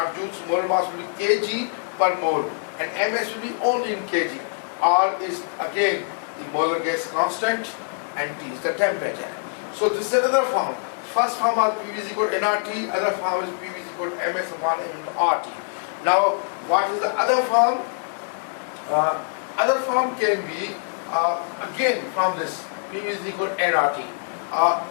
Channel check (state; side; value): silent; right; digital silence